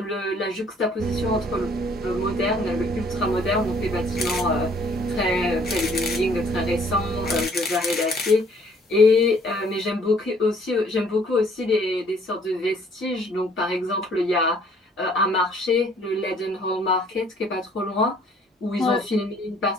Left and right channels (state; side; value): normal; both; correlation 0.60